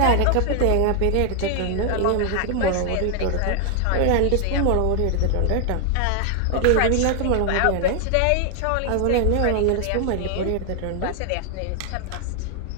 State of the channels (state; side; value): different; both; correlation 0.00